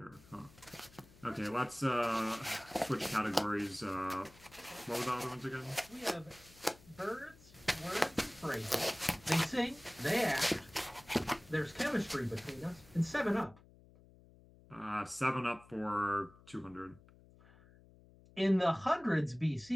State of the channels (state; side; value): noise; left; hum, 24 dB below the sound